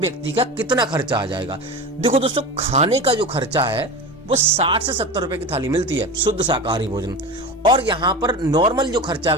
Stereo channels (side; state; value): both; normal; correlation 0.28